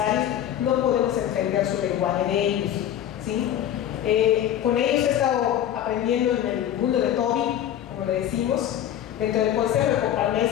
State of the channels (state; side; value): quieter; right; 10.9 dB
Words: no podemos entender su lenguaje de ellos, ¿sí? Con ellos he estado aprendiendo en el mundo de Toby, como le decimos, dentro del consejo de